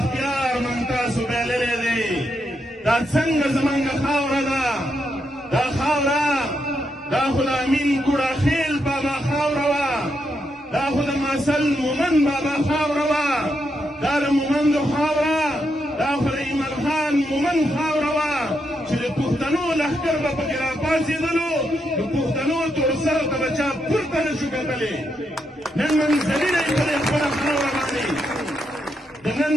موږ تاسو بایللی دی دا څنګه زموږ خاوره ده دا خاوره دا خو د امین ګوړاخیل بابا خاوره وه دا خو د ماسل مومند بابا خاوره وه دا د مومندو خاوره دا خو د ایمل خان مومند خاوره وه چې د پښتنو لښکر به پکې راپاڅېدلو د پښتنو توړسرو ته به چا پورته نه شو کتلی نن منزلونه یې په دې خپله خاوره باندې د نن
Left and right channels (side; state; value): both; normal; correlation 0.81